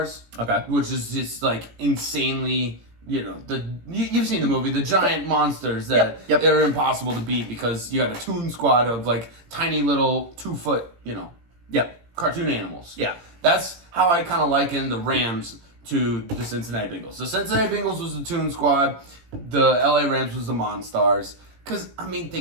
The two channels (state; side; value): late; left; 17 ms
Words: Okay. which is just like insanely. You've seen the movie, the giant monsters that Yep. are impossible to beat because you had a toon squad of like tiny little 2-foot, Yep. cartoon animals. Yeah. That's how I kind of liken the Rams to the Cincinnati Bengals. The Cincinnati Bengals was the toon squad, the LA Rams was the Monstars. Because, I mean,